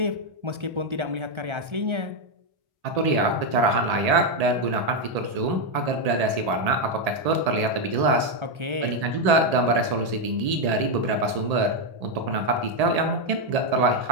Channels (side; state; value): left; late; 1.8 ms